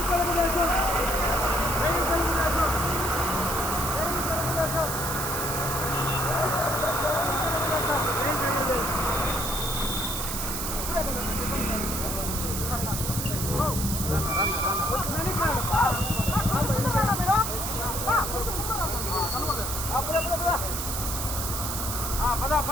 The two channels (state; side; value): noise; right; hiss, 3 dB below the sound